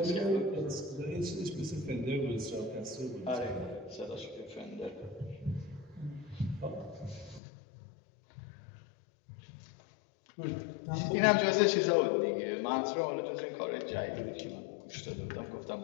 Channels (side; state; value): right; drops out; at 7.4 s